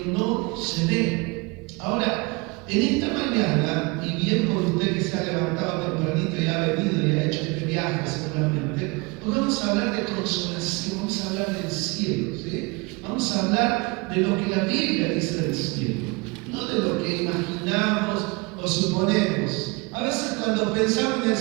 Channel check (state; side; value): quieter; left; 27.1 dB